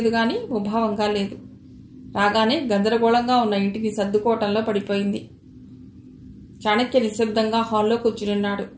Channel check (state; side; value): identical; both; correlation 1.00